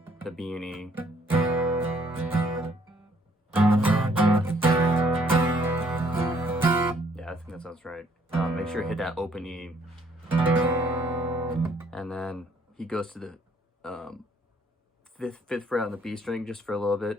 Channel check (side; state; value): both; normal; correlation 0.65